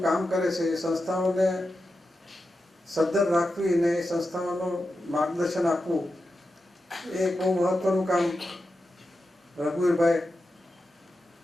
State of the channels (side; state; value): both; normal; correlation 0.90